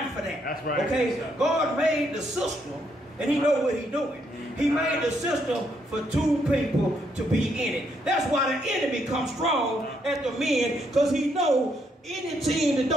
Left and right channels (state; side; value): normal; both; correlation 0.75